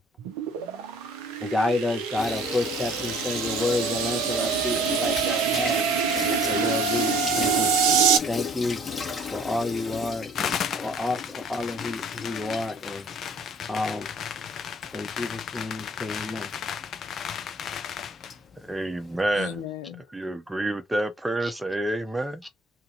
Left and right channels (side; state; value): both; normal; correlation 0.54